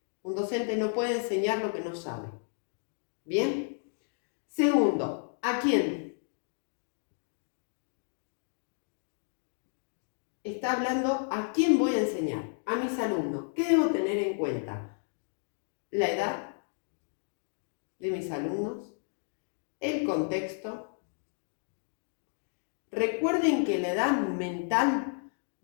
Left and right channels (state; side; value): silent; right; 56 dB below the other